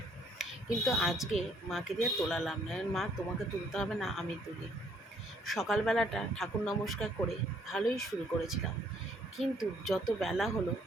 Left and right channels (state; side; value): normal; both; correlation 0.65